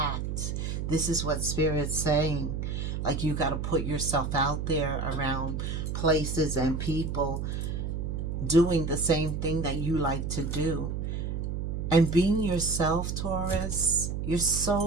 This is what Spirit's saying. Like, you got to put yourself out there around places and people doing the same thing that you like to do. And being yourself, Taurus, you're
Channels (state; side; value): noise; right; hum, 3 dB below the sound